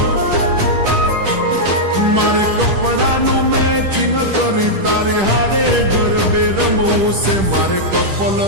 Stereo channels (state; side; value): late; left; 10 ms